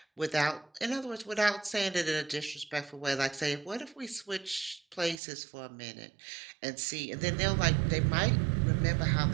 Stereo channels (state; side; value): drops out; left; at 5.2 s